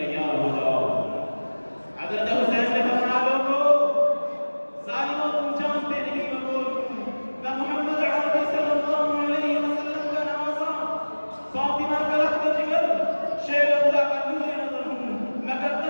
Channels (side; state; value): both; inverted; correlation -1.00